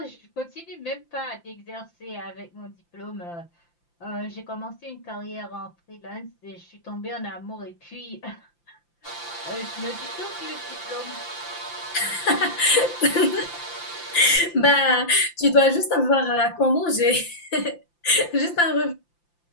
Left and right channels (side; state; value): right; late; 5.8 ms